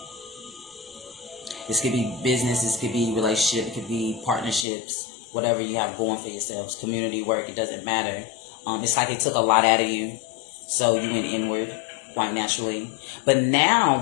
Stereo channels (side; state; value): right; drops out; at 4.7 s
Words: This could be business, this could be relationship, it could be partnerships, whatever you have going for yourselves, community work, it doesn't matter. It's like it took a lot out of you, so you went inward quite naturally. But now